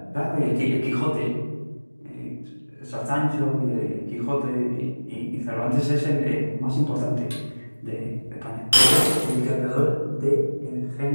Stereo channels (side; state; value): both; inverted; correlation -1.00